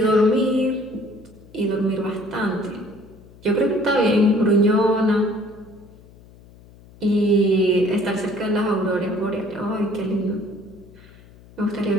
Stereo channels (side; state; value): left; noise; hum, 23 dB below the sound